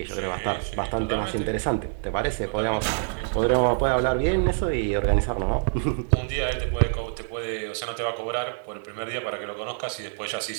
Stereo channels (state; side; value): silent; left; digital silence